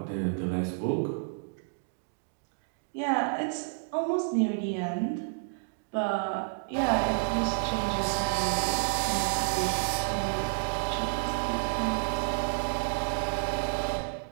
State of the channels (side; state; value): left; silent; digital silence